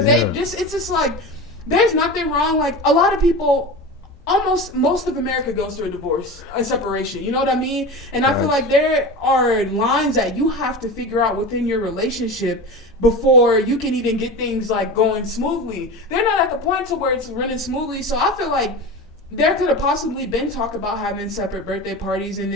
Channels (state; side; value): normal; both; correlation 0.28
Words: it's just like, there's nothing wrong. Like, a lot of people, almost most of America goes through a divorce, a separation. You know what I mean? And I feel like there are lines that you have to figure out within your relationship before you can even get things, like, going smoothly. They're not at the point to where it's running smoothly, so I feel like there could have possibly been talk about having separate birthday parties, and